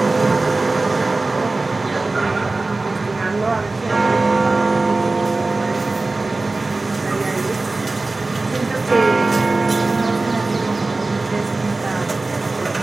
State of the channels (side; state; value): left; quieter; 3.3 dB